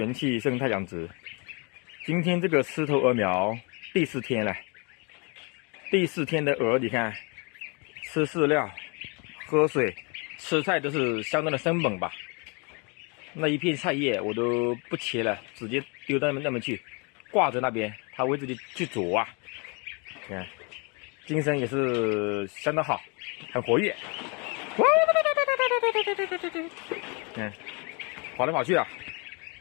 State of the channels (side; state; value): right; quieter; 32.3 dB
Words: 气生态养殖。今天这个狮头鹅苗第4天了，第4天的鹅，你看，吃饲料、喝水、吃菜都是相当的生猛吧。那一片菜叶我都不切了，直接丢到那边去，挂着那边，它会自己去啄啊。你看，精神也是相当好，很活跃。看，跑来跑去啊。